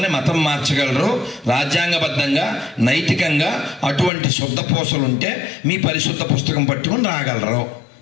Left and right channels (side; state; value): right; drops out; at 4.1 s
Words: మతం మార్చగలరు. రాజ్యాంగబద్ధంగా నైతికంగా అటువంటి శుద్ధ పూసలు ఉంటే మీ పరిశుద్ధ పుస్తకం పట్టుకుని రాగలరు.